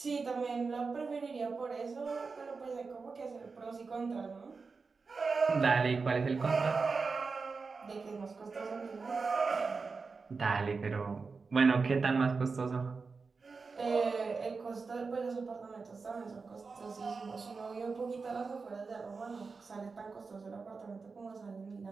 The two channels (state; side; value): quieter; left; 4.6 dB